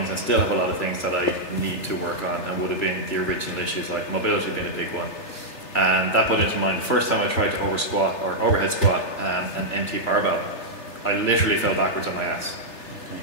and still have a lot of things that I need to work on, and would have been the original issues, like mobility being a big one. And that put into mind the first time I tried to overhead squat an empty barbell, I literally fell backwards on my ass.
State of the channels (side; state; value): right; late; 3.3 ms